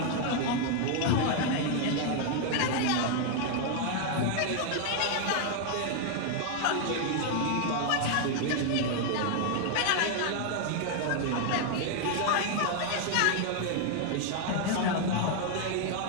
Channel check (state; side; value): different; both; correlation 0.00